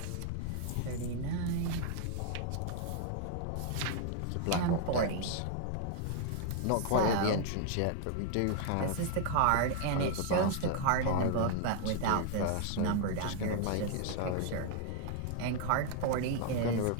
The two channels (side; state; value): both; different; correlation 0.00